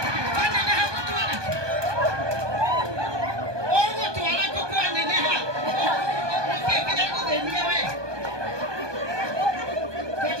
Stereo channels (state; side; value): late; left; 1.2 ms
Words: waneneha gũtwara ũgũtwara gũkwaneneha ũkĩkĩra gũthĩnia we